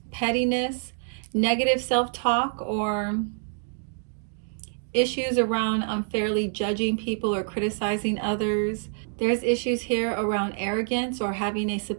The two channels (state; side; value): silent; left; digital silence